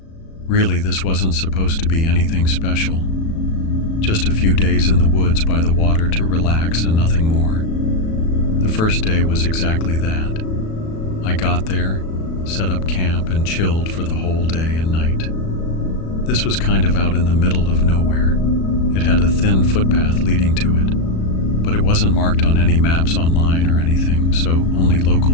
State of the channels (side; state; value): right; late; 37 ms